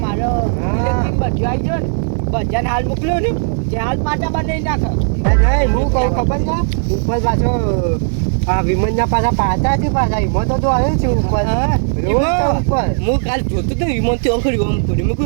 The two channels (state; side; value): silent; left; digital silence